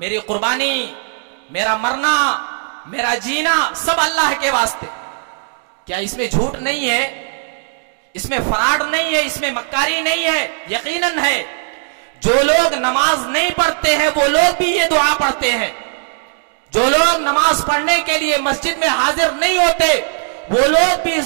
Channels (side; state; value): left; silent; digital silence